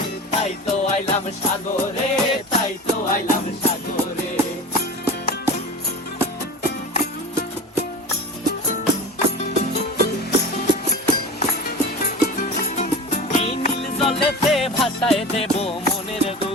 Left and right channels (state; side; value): normal; both; correlation 0.31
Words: তাই তো আইলাম সাগরে, তাই তো আইলাম সাগরে। জলেতে ভাসায় দেব মনের